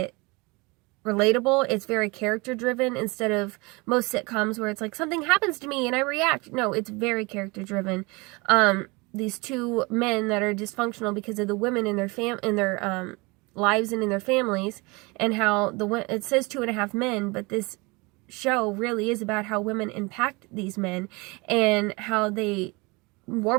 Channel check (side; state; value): left; quieter; 26.3 dB